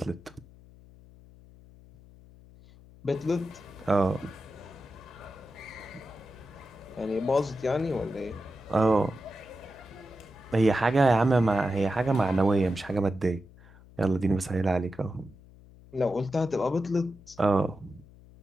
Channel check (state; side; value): noise; left; hum, 22 dB below the sound